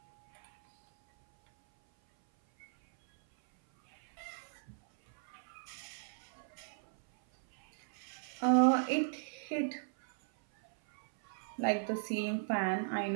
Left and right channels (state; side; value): silent; left; 54 dB below the other